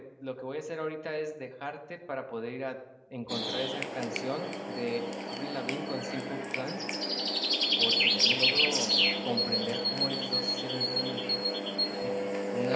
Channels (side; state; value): both; identical; correlation 1.00